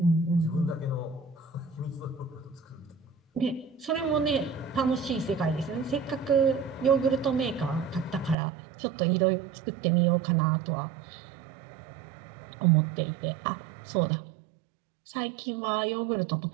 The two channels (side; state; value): left; drops out; at 8.3 s